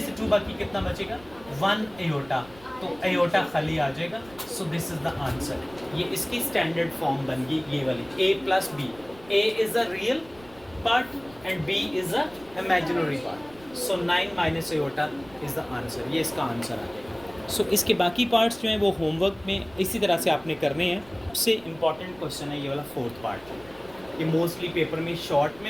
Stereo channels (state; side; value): noise; right; rumble, 23 dB below the sound